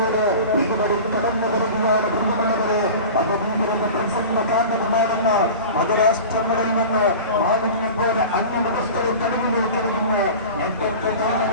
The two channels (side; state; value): both; inverted; correlation -0.35